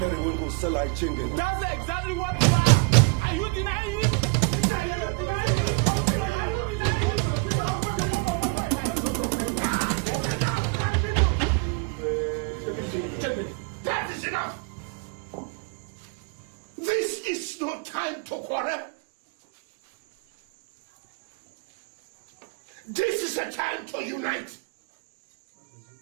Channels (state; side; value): quieter; left; 31.8 dB